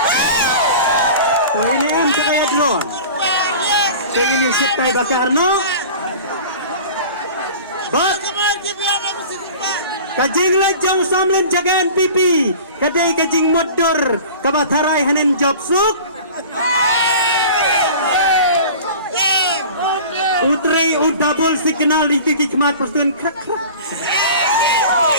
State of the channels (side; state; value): both; inverted; correlation -0.40